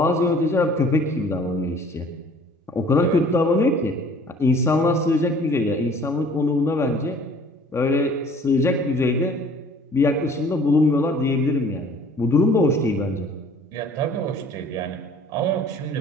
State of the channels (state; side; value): normal; both; correlation 0.52